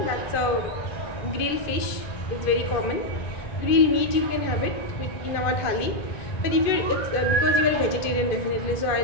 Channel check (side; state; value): right; late; 2.5 ms